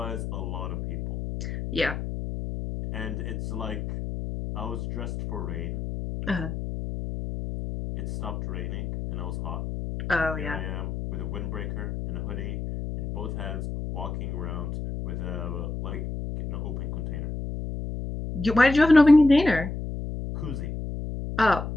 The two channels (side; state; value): left; noise; hum, 5 dB below the sound